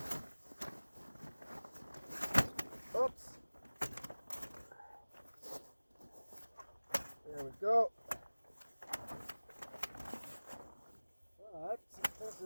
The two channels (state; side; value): inverted; both; correlation -1.00